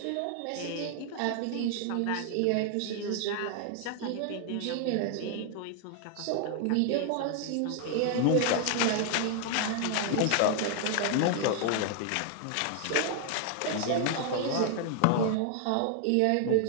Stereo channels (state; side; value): different; both; correlation 0.00